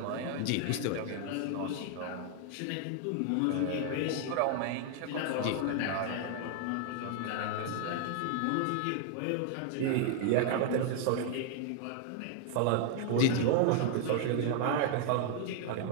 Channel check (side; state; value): both; different; correlation 0.00